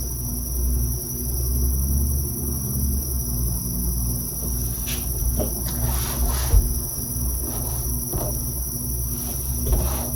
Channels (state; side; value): identical; both; correlation 1.00